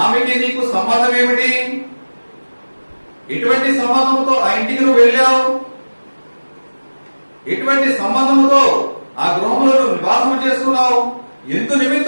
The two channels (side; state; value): both; inverted; correlation -1.00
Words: ఆమెకి నీకు సంబంధం ఏమిటి? ఎటువంటి సంబంధంతో ఆ ఇంటికి నువ్వు వెళ్ళావు? ఎటువంటి సంబంధంతో ఆ గృహంలో నువ్వు నివాసం చేసుకున్నావు? ఎందు